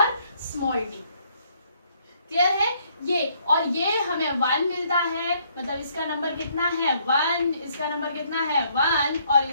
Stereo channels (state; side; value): inverted; both; correlation -0.67